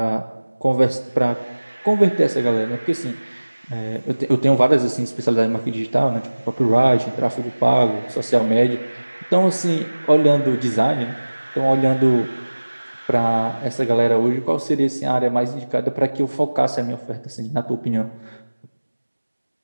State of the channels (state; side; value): inverted; both; correlation -1.00